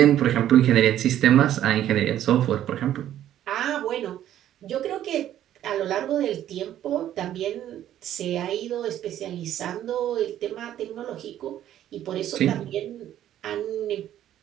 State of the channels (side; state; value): left; quieter; 11.7 dB